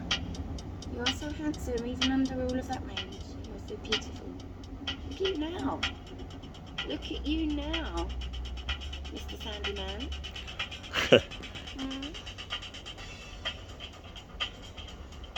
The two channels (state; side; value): identical; both; correlation 1.00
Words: You are so handsome, even under all of that range. You are so beautiful. Look at you now. Look at you now, Mr. Sandyman.